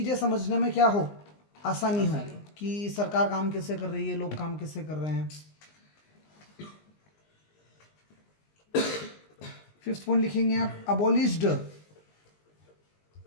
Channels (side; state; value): right; late; 19 ms